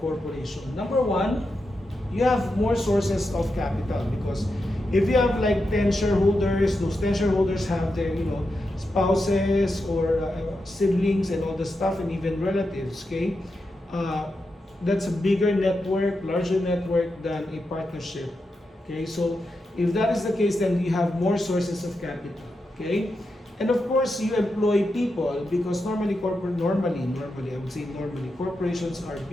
Number one, you have more sources of capital, because if you have like 10 shareholders, those 10 shareholders have their spouses or siblings and all the stuff, and even relatives, okay. That's a bigger network, larger network than a partnership, okay. So if that is the case, then you have more sources of capital, okay. And of course, you employ people, because normally I would say normally corporations are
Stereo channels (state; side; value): normal; both; correlation 0.87